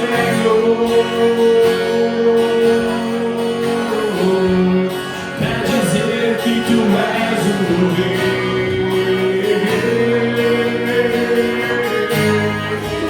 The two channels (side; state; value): both; identical; correlation 1.00